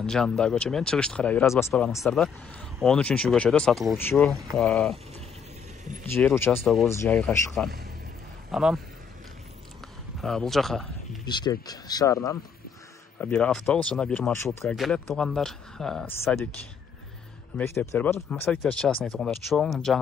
жанындагы көчө менен чыгышты карай бир аз басып барганыңыздарда 13-көчөдө сатылуучу жер участогубуз жайгашкан. Анан бул жака Бишкек шаарынан бир автобус жана бир маршрутка келет туугандар. Садик мектептер бар. Садиктер частный туугандар, чоң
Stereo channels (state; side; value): quieter; right; 6.6 dB